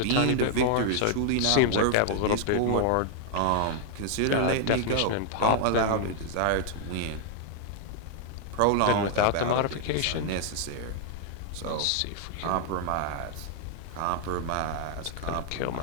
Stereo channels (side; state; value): both; different; correlation -0.01